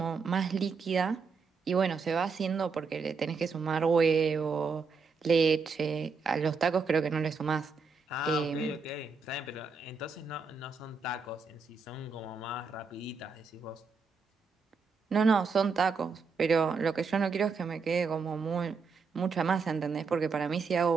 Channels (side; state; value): left; quieter; 4.9 dB